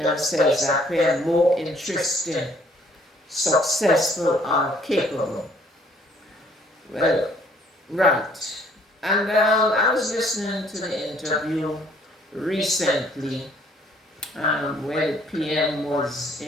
appear more interesting, successful, or capable. Well, right. And I was listening to the interview recently where the PM was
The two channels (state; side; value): normal; both; correlation 0.61